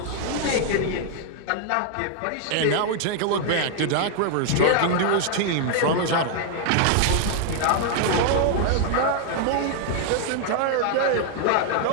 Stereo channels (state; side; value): different; both; correlation 0.00